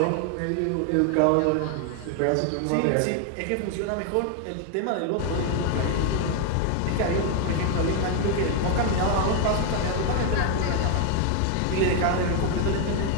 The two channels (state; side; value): different; both; correlation 0.00